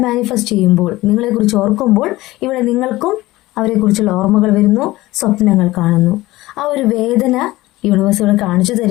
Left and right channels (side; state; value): right; quieter; 18.2 dB